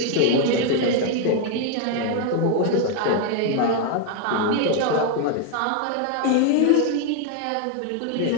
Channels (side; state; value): both; different; correlation 0.01